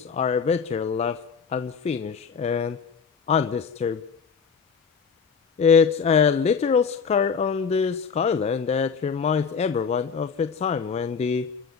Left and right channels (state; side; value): quieter; right; 6.0 dB